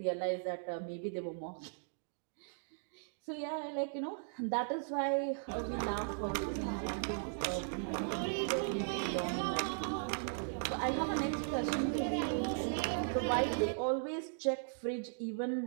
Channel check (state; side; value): silent; left; digital silence